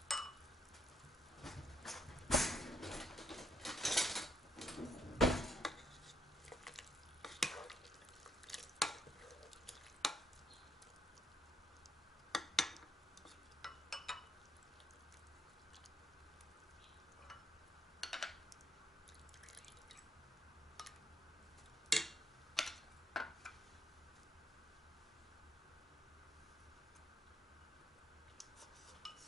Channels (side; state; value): both; normal; correlation 0.74